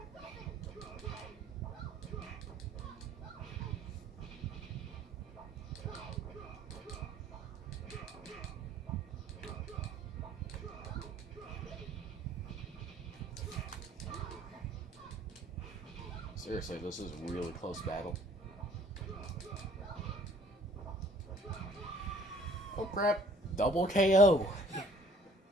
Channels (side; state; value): both; normal; correlation 0.56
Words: Seriously, this is a really close battle. Oh crap, double KO.